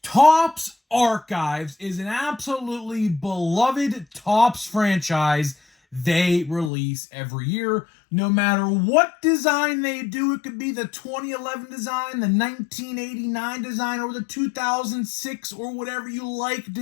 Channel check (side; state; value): right; drops out; at 6.7 s